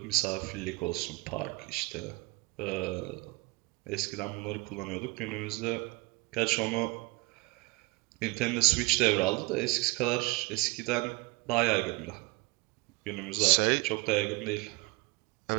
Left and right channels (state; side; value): quieter; left; 23.8 dB